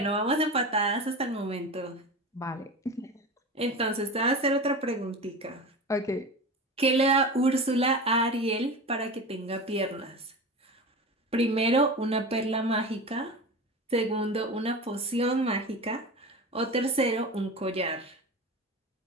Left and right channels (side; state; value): both; normal; correlation 0.29